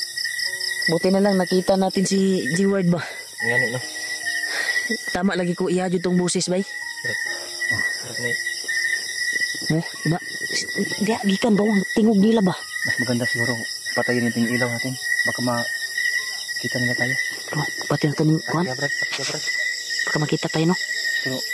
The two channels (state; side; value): identical; both; correlation 1.00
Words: Buti na lang nakita natin si G-Ward ba? Ngayon, no? Tama lagi ko ihadyo tong busis, bay. Oh, diba? Di gikan ba ang tingog nila ba? Mas maganda siguro patayin natin yung ilaw natin. Baka makita nila tayo. Oh, pati na ito kuhan. Baka makita tayo, no? Pero